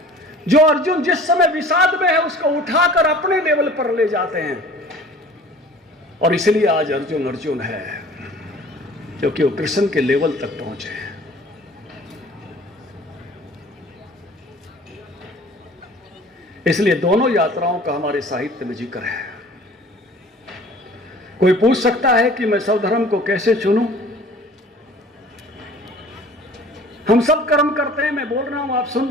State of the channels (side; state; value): both; normal; correlation 0.48